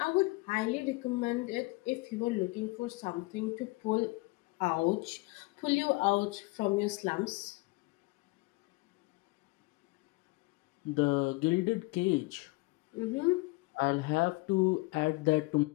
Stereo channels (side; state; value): right; quieter; 23.8 dB